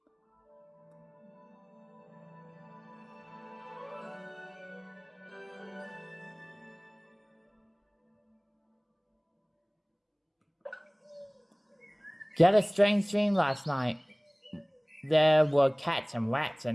Got a strange dream last night. there were cats and rats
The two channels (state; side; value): identical; both; correlation 1.00